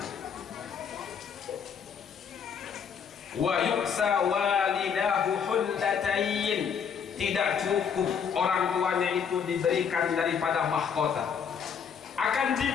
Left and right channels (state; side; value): quieter; right; 7.1 dB